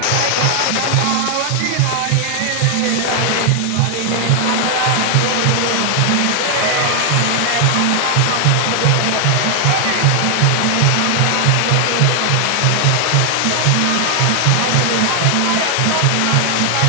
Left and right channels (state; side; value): different; both; correlation 0.00